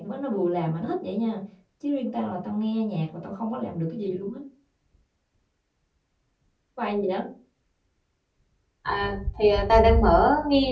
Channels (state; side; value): identical; both; correlation 1.00